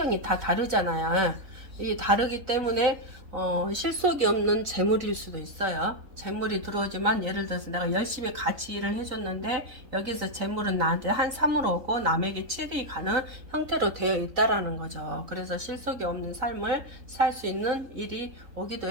다 다르잖아요. 이 다르기 때문에 실속이 없는 재물일 수도 있어요. 재물이 들어오지만 예를 들어서 내가 열심히 같이 일을 해줬는데 여기서 재물은 나한테 한 3으로 오고 남에게 7이 가는 형태로 되어 있다라는 거죠. 그래서 실속이 없는 삶을 살 수 있는 일이 오기도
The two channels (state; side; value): late; left; 4.0 ms